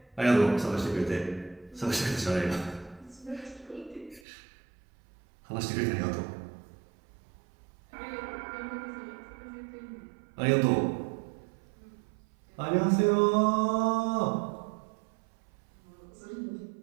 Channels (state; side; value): drops out; left; at 4.2 s